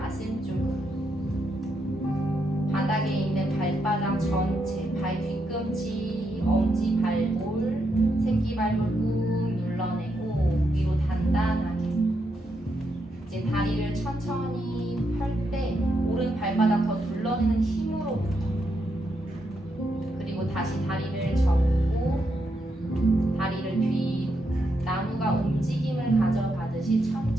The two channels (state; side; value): normal; both; correlation 0.81